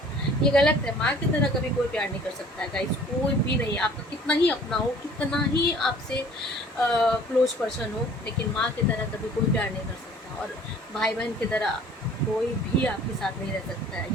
ये गलत है। माँ की तरह कभी कोई प्यार नहीं कर सकता है गाइस, कोई भी नहीं। आपका कितना ही अपना हो, कितना ही आपसे क्लोज पर्सन हो, लेकिन माँ की तरह कभी कोई प्यार नहीं कर सकता। और भाई बहन की तरह कोई भी आपके साथ नहीं रह सकता है।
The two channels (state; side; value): normal; both; correlation 0.51